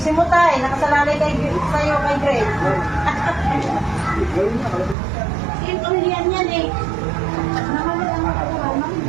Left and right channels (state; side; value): drops out; left; at 5.0 s